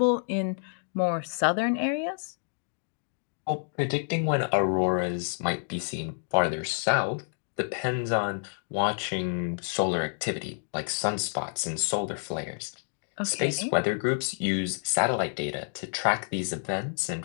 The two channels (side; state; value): right; silent; digital silence